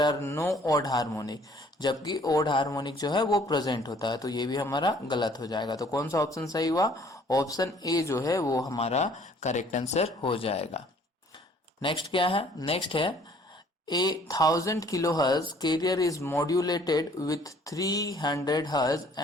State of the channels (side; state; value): both; normal; correlation 0.58